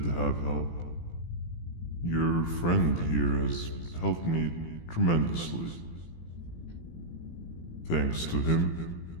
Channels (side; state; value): right; late; 18 ms